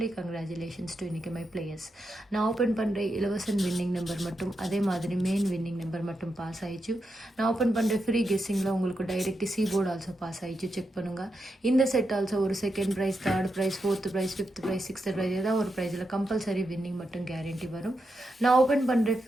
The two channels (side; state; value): both; normal; correlation 0.86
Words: கங்க்ராச்சுலேஷன்ஸ் டு இன்றைக்கி மை பிளேயர்ஸ். நான் ஓப்பன் பண்ணுற இலவசன் வின்னிங் நம்பர் மட்டும் அதே மாதிரி மெயின் வின்னிங் நம்பர் மட்டும் பாஸ் ஆயிடுச்சு. நான் ஓப்பன் பண்ணுற ஃப்ரீ கெஸ்ஸிங்கில் உங்களுக்கு டைரெக்ட் போர்டு ஆல்சோ பாஸ் ஆயிடுச்சு. செக் பண்ணுங்கள். இந்த செட் ஆல்சோ ஒரு second prize, third prize, 4th prize, 5th prize, 6th prize ஏதாவது ஒரு ப்ரைஸில் கம்பல்சரி வின்னிங் மட்டும் கேரண்டி வரும். நான் ஓப்பன் பண்ணுற